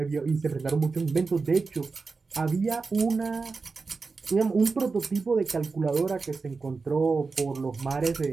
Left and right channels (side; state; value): left; quieter; 4.4 dB